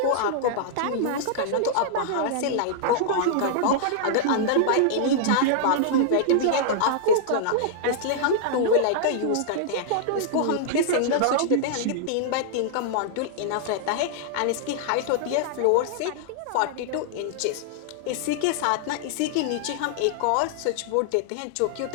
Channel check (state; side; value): different; both; correlation -0.01